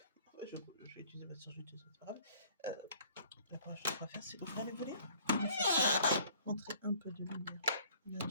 je vais utiliser ma surjeteuse, c'est pas grave. La première chose qu'on va faire, c'est ouvrir les volets, entrer un peu de lumière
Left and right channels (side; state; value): both; inverted; correlation -0.55